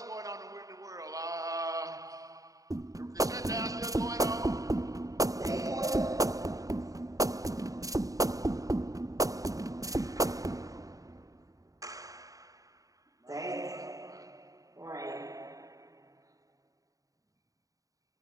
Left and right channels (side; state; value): left; late; 0.17 ms